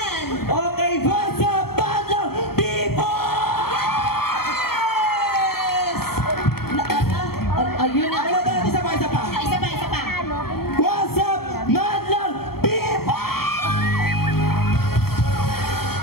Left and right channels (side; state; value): right; late; 0.95 ms